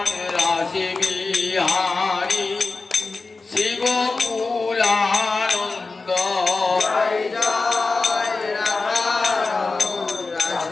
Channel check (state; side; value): quieter; right; 3.8 dB